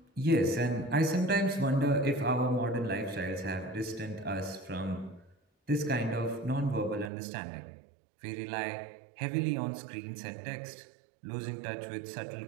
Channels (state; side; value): drops out; left; at 7.1 s